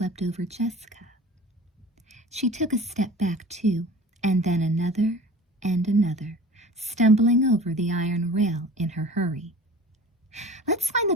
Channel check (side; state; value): both; normal; correlation 0.41